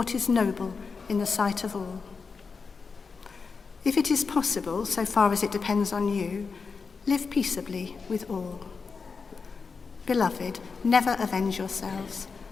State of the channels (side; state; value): right; quieter; 5.0 dB